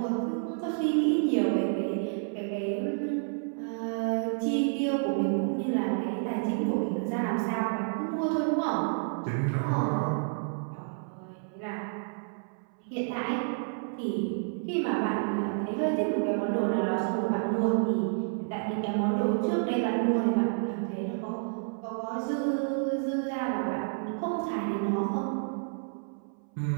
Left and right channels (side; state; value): left; silent; 58 dB below the other